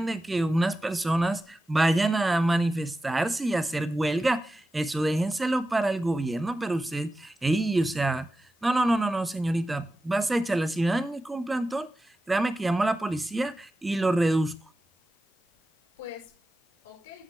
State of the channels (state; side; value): normal; both; correlation 0.93